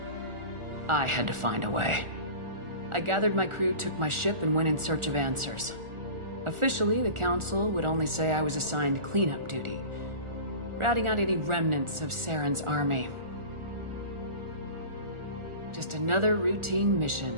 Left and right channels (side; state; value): left; late; 1.4 ms